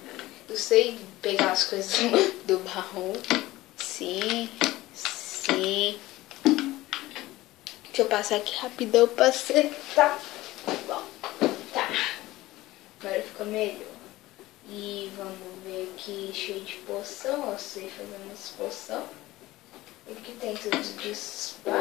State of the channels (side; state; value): right; quieter; 17.6 dB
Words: Eu sei pegar as coisas do baú. Sim. Deixa eu passar aqui rapidão pra acertar. Bom, tá. Agora fica melhor. E vamos ver aqui, cheio de poção. Eu sei fazer umas poção. Aqui tem tudo de